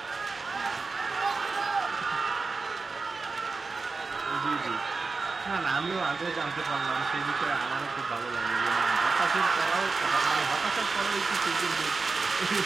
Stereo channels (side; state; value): left; quieter; 4.1 dB